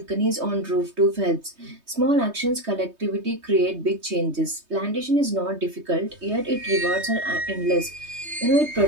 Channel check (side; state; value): left; late; 3.2 ms